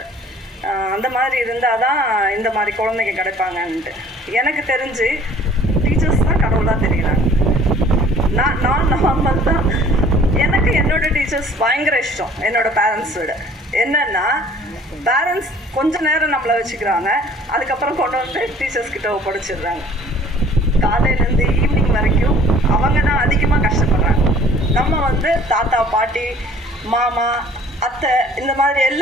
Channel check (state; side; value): normal; both; correlation 0.52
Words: அந்த மாதிரி இருந்தால் தான் இந்த மாதிரி குழந்தைங்க கிடைப்பாங்கன்ட்டு. எனக்கு தெரிஞ்சு டீச்சர்ஸ் தான் கடவுளாக தெரியுறாங்க. நான் நார்மல் தான். எனக்கு என்னோடய டீச்சர்ஸ் பயங்கர இஷ்டம் என்னோடய பேரண்ட்ஸ் விட. என்னென்னா பேரண்ட்ஸ் கொஞ்சம் நேரம் நம்மளை வச்சுக்கிறாங்க, அதுக்கப்புறம் கொண்டு வந்து டீச்சர்ஸ்கிட்ட ஒப்படைச்சிடுறாங்க. காலையிலேருந்து ஈவினிங் வரைக்கும் அவங்க தான் அதிகமாக கஷ்டப்படுறாங்க. நம்ம வந்து தாத்தா பாட்டி மாமா அத்தை இந்த மாதிரி